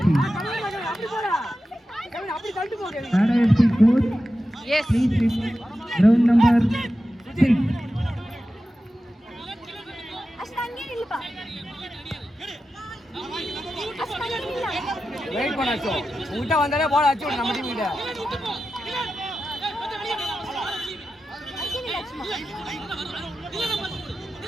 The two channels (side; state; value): both; normal; correlation 0.92